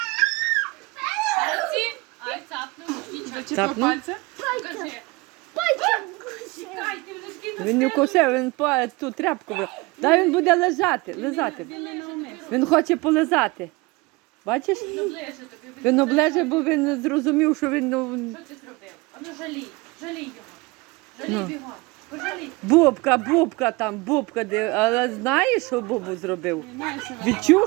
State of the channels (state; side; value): quieter; left; 24.2 dB